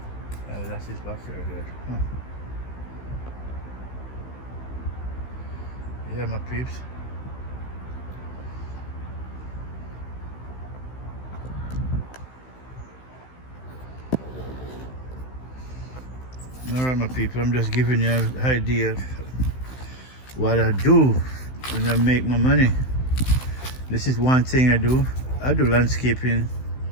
That's his backyard there. Huh. Yeah, my peeps. Alright, my people, I'm just giving you an idea of what I do when I make my money. This is one thing I do. I do landscaping.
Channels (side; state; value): right; late; 16 ms